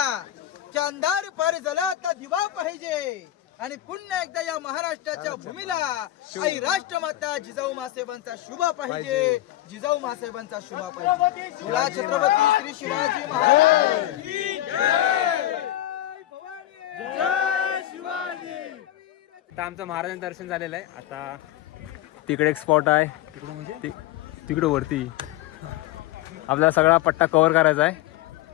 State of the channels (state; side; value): quieter; right; 13.9 dB